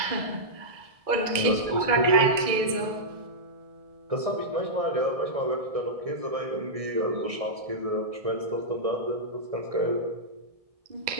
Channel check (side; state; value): left; late; 1.6 ms